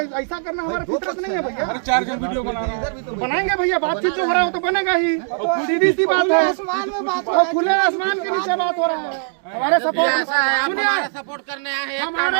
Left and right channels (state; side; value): silent; left; 66 dB below the other